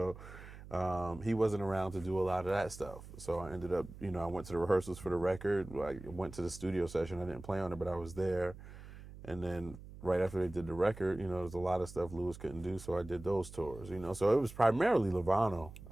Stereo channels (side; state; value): right; noise; hum, 15 dB below the sound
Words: he wasn't around to do a lot of that stuff. So I ended up, I went to the rehearsals for the record. I went to the studio session. I didn't play on it, but I was there. And then right after they did the record, there's a lot of stuff Louis couldn't do, so I did those tours, So it was primarily Levano